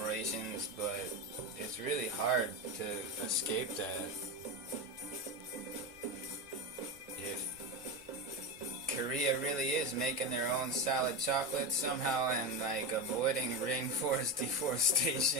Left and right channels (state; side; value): normal; both; correlation 0.18